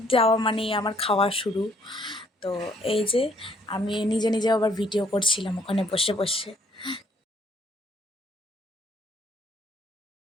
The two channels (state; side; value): normal; both; correlation 0.64